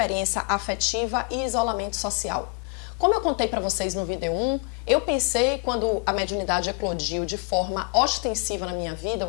afetiva e isolamento social. Como eu contei para vocês no vídeo 1, eu pensei, quando a mediunidade eclodiu de forma ostensiva na minha vida,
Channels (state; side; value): quieter; right; 35.3 dB